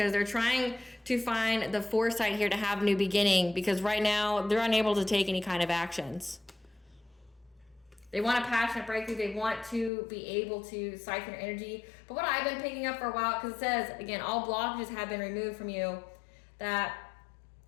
they're trying to find the foresight here to have a new beginning, because right now they're unable to take any kind of actions. They want a passionate breakthrough. They want to be able to siphon your energy. But what I've been picking up for a while, because it says, again, all blockages have been removed from you, that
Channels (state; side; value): drops out; right; at 9.9 s